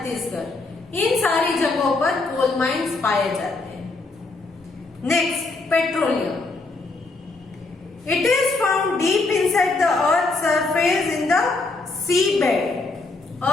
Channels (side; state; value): right; quieter; 3.4 dB